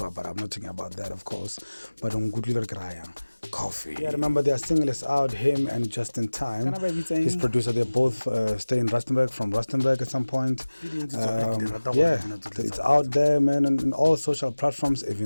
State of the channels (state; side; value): inverted; both; correlation -1.00